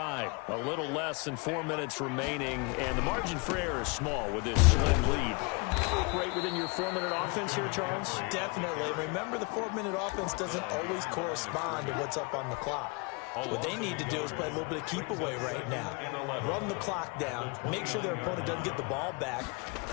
A little less than 4 minutes remaining, and the margin for error is small with this slim lead. Operate within your 4-minute offense here, Charles? Definitely. Remember, the 4-minute offense doesn't always correspond to what's up on the clock. What they need to do is play a little bit of keep away right now. Run the clock down. Make sure their opponent doesn't get the ball back.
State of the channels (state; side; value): quieter; right; 29.8 dB